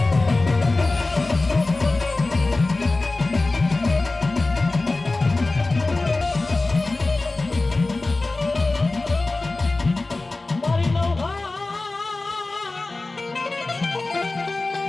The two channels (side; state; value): right; quieter; 3.3 dB